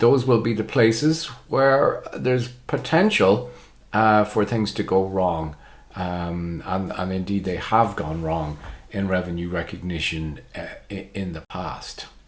will be the places where there's potential for things to go wrong. And indeed they have gone wrong in revenue recognition in the past.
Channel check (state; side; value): identical; both; correlation 1.00